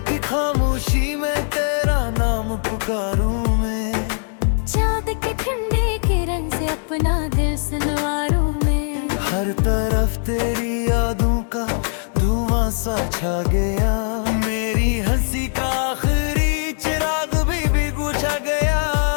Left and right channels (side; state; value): right; silent; 64 dB below the other